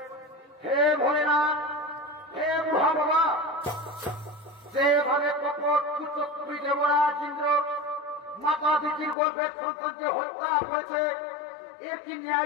হে ভোলেনাথ, হে মহা বাবা, যেভাবে কপট কুচক্রী দেবরাজ ইন্দ্র মাতা দিদির গর্ভের সন্তানকে হত্যা করেছে, এর কি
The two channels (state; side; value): drops out; right; at 9.2 s